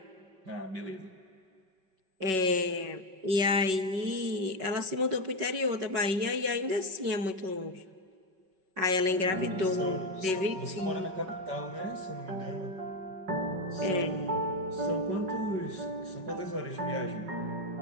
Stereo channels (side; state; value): left; late; 5.3 ms